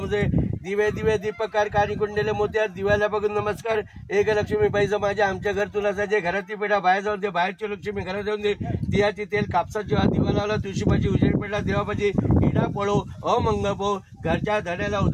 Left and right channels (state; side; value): identical; both; correlation 1.00